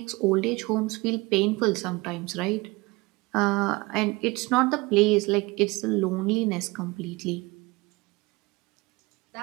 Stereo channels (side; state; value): left; quieter; 23.6 dB